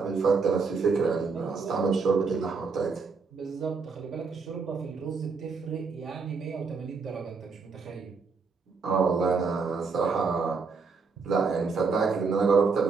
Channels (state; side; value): quieter; left; 4.9 dB